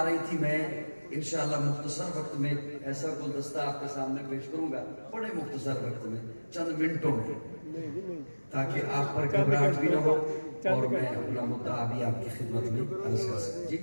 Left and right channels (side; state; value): both; inverted; correlation -1.00